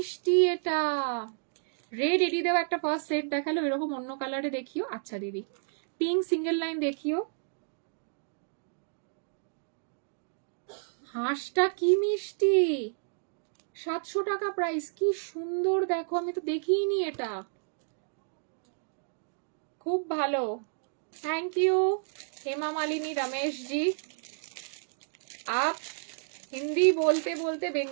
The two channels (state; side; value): silent; left; digital silence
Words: এটা। রেড এডি দেওয়া একটা ফার্স্ট সেট দেখালো, এরকম অন্য কালারে দেখিও। আচ্ছা দিদি পিঙ্ক সিঙ্গেল লাইন দেখিও। হাঁসটা কি মিষ্টি, 700 টাকা প্রাইস, কি সুন্দর দেখো, আমি তো দেখিনি এটা, খুব ভালো। थैंक यू हेमा मालिनी रमेश जी, आप हिंदी बोलते बोलते